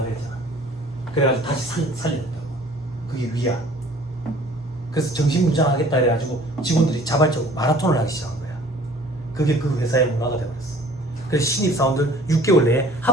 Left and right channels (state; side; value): normal; both; correlation 0.51